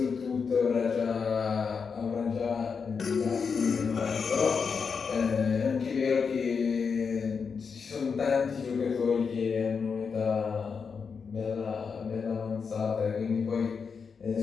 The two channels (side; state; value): right; quieter; 5.7 dB